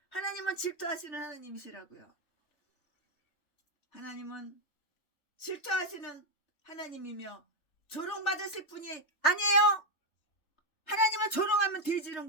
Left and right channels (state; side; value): late; right; 3.2 ms